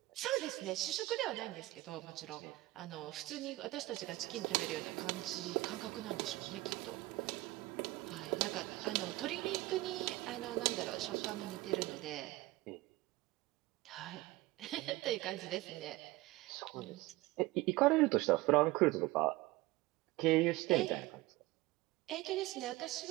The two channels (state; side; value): quieter; left; 19.4 dB